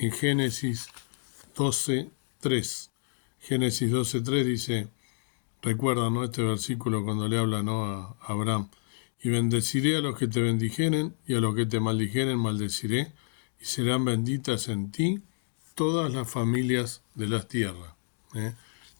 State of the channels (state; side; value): silent; right; digital silence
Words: Génesis 12:3. Génesis 12:3 dice, recuerda, ¿no?, este versículo cuando le habla, ¿no?, a Abraham. Y bendeciré a los que te bendijeren, y a los que te maldijeren maldeciré, y serán benditas en ti todas las familias de las tierras. En